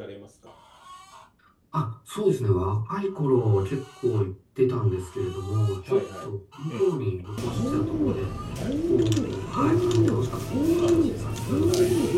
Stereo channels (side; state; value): both; identical; correlation 1.00